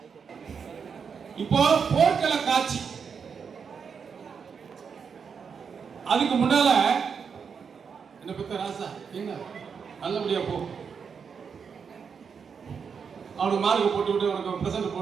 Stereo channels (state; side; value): quieter; left; 6.3 dB